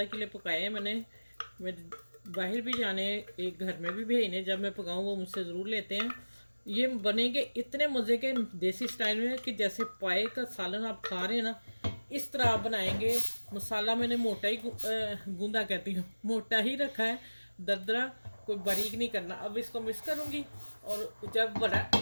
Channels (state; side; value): inverted; both; correlation -1.00